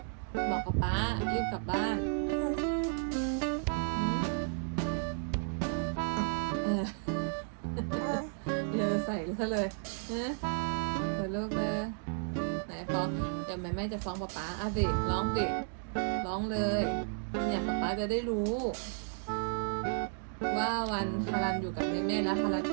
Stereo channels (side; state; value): left; silent; 56 dB below the other